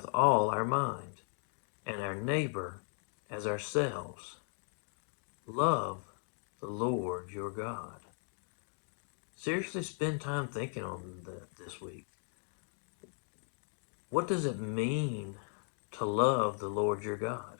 all our mind, and our neighbor as ourselves. Love the Lord your God. Seriously, spend time thinking on that this week. What does it mean to love the Lord your God?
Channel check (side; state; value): right; silent; 53 dB below the other